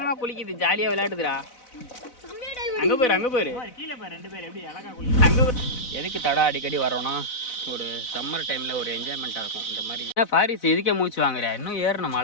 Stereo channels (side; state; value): right; late; 4.0 ms